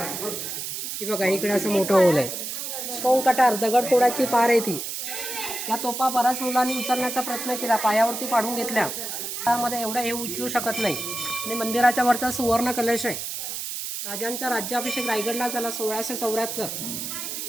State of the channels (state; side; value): noise; right; hiss, 5 dB below the sound